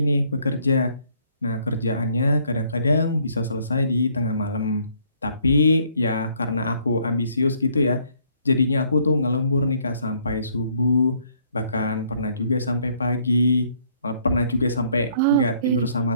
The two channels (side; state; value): both; inverted; correlation -0.65